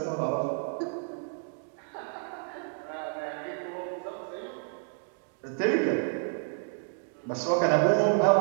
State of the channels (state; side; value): silent; left; 57 dB below the other